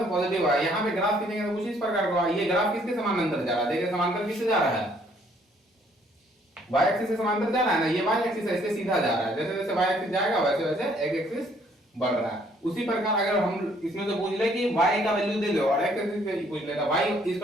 पॉजिटिव है। यहां पे ग्राफ खींचेंगे तो कुछ इस प्रकार का, ये ग्राफ किसके समानांतर जा रहा है, देखिए समांतर किससे जा रहा है, y एक्सिस से समांतर जा रहा है ना, ये y एक्सिस है, इससे सीधा जा रहा है। जैसे जैसे y एक्सिस जाएगा वैसे वैसे x एक्सिस बढ़ रहा है। उसी प्रकार अगर हम इसमें से पूछ ले कि y का वैल्यू दे दो और x एक्सिस से पूछ लेता, y =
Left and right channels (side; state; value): both; normal; correlation 0.64